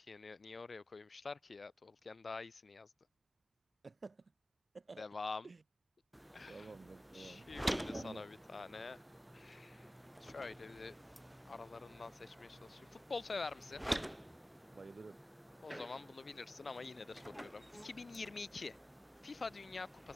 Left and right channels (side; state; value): both; normal; correlation 0.97